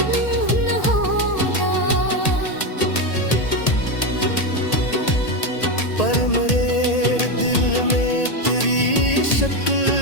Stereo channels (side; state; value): right; late; 1.8 ms